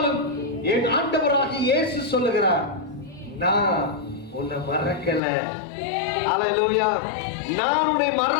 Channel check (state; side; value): drops out; right; at 5.2 s